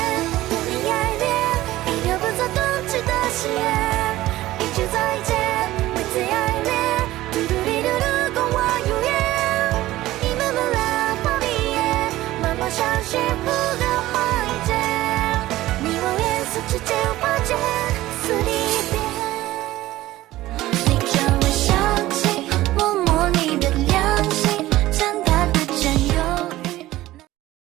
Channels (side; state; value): left; quieter; 16.3 dB